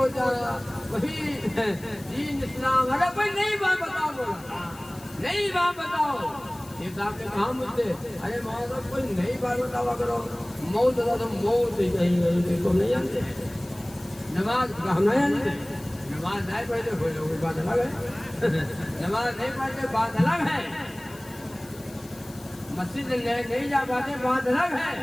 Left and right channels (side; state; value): left; noise; hiss, 21 dB below the sound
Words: وہی دین اسلام۔ ارے کوئی نئی بات بتاؤ، مولانا نئی بات بتاؤ۔ یہ صاحب نے کہا مجھ سے، ارے مولانا کوئی نئی بات بتاؤ کرو، موت بتا تو موت ہی کہیں تم نہیں جانتے، نماز کا ہم نہیں جانتے، نماز نہیں پڑھتے کوئی لوگ بات الگ ہے، نماز نہیں پڑھتے بات الگ ہے، مسجد نہیں جا پاتے بات الگ ہے،